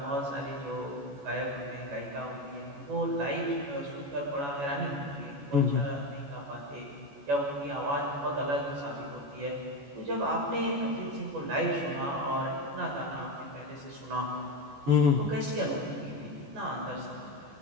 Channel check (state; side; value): late; left; 14 ms